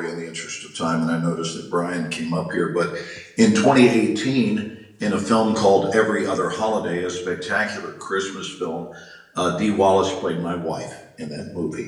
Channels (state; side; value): identical; both; correlation 1.00